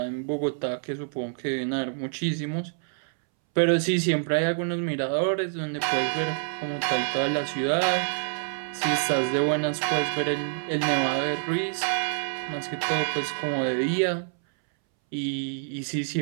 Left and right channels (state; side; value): silent; left; 60 dB below the other